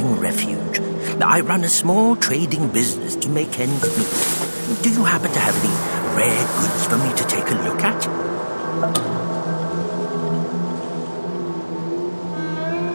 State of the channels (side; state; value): both; inverted; correlation -1.00